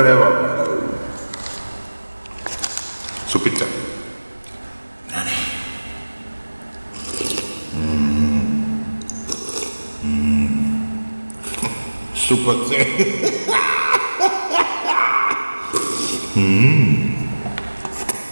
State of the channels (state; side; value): inverted; both; correlation -1.00